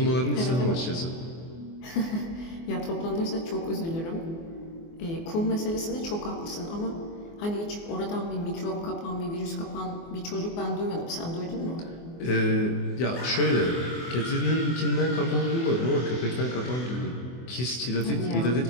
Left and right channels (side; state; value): right; late; 24 ms